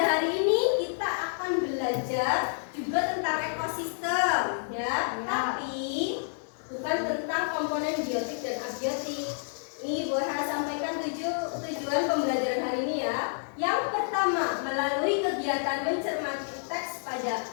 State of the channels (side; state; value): right; silent; digital silence